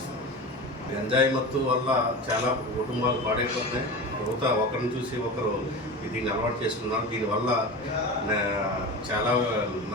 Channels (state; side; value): normal; both; correlation 0.29